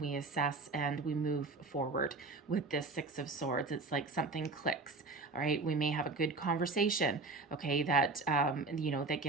assess, and we move forward with this Six of Swords. It's like something clicks, all right. We may have a good conversation, okay, that, that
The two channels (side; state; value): left; quieter; 3.6 dB